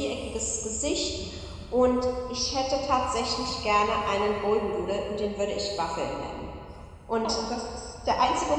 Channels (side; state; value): both; identical; correlation 1.00